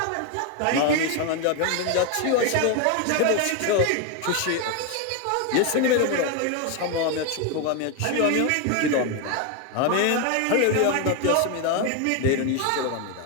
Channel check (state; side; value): different; both; correlation 0.01